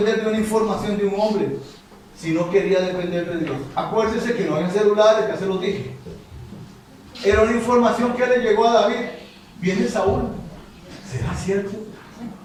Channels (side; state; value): both; identical; correlation 1.00